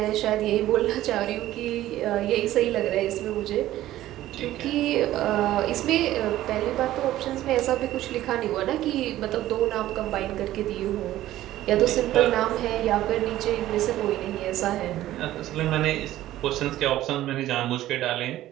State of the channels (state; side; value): quieter; left; 14.3 dB